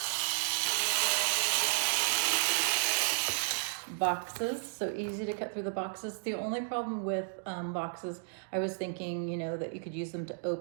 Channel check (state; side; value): silent; left; digital silence